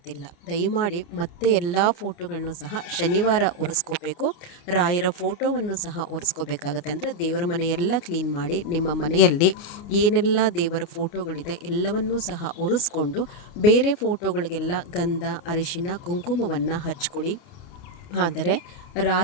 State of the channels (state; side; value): late; right; 28 ms